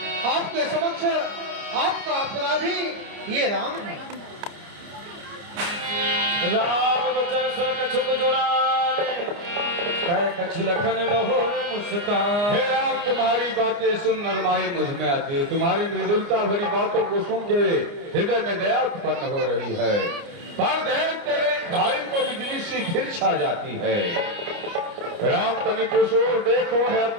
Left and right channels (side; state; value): left; late; 29 ms